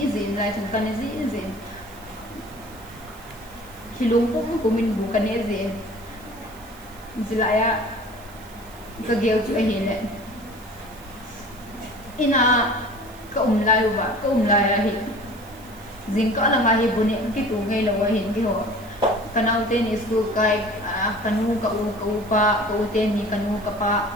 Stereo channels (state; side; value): noise; right; hiss, 22 dB below the sound